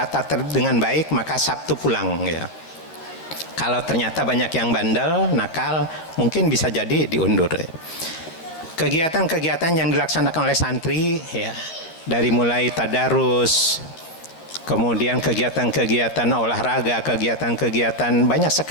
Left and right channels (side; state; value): right; late; 12 ms